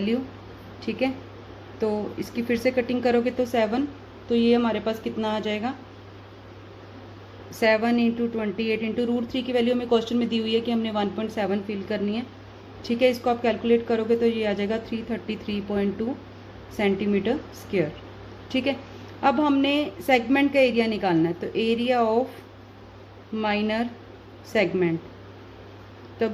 ठीक है, तो इसकी फिर से कटिंग करोगे तो 7, तो ये हमारे पास कितना आ जाएगा 7 इंटू 28 इंटू √3 की वैल्यू हमें क्वेश्चन में दी हुई है कि हमने 1.7 फिल करनी है। ठीक है, इसको आप कैलकुलेट करोगे तो ये आ जाएगा 333.2 सेंटीमीटर स्क्वायर। ठीक है, अब हमने सेगमेंट का एरिया निकालना है, तो एरिया ऑफ माइनर सेगमेंट, तो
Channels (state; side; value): identical; both; correlation 1.00